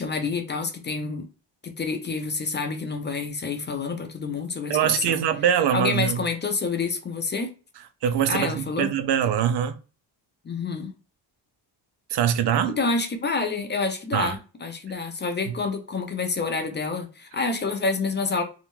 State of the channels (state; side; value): normal; both; correlation 0.07